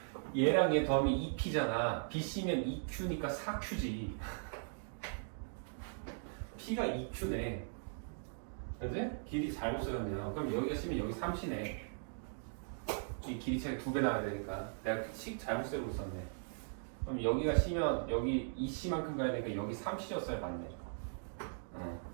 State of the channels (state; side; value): silent; left; digital silence